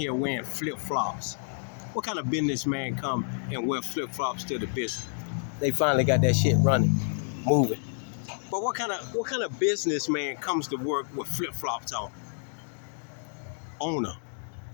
wearing flip-flops. What kind of businessman come and wear flip-flops to the business? They finally got that shit running, moving. But what kind of businessman comes to work with flip-flops on? Owner.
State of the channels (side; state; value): right; silent; digital silence